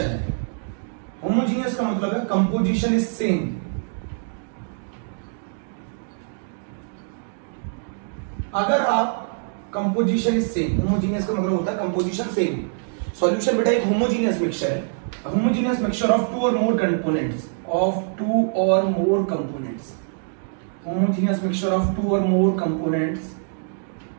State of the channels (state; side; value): silent; left; digital silence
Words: है। होमोजीनियस का मतलब है कंपोजिशन इज सेम। अगर आप कंपोजिशन इज सेम, होमोजीनियस का मतलब होता है कंपोजिशन सेम। सॉल्यूशन बेटा एक होमोजीनियस मिक्सचर है। Homogeneous mixture of two or more components, homogeneous mixture of two or more components,